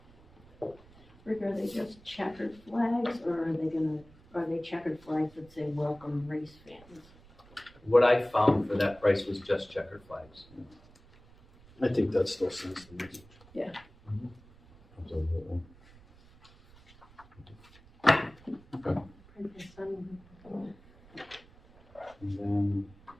Rick, are they just checkered flags, or are they checkered flags that say welcome race fans? What I found for that price was just checkered flags. I think that still sends the message. Absolutely. And then,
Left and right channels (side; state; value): right; noise; rumble, 25 dB below the sound